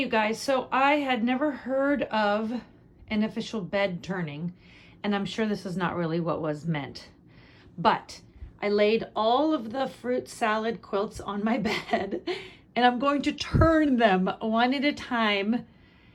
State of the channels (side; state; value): both; identical; correlation 1.00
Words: you guys, so I had never heard of an official bed turning, and I'm sure this is not really what was meant, but I laid all of the fruit salad quilts on my bed, and I'm going to turn them one at a time.